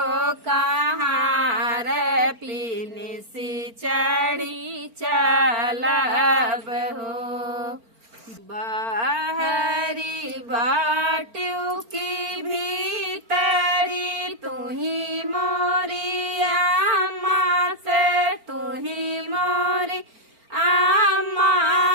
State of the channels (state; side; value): late; left; 4.4 ms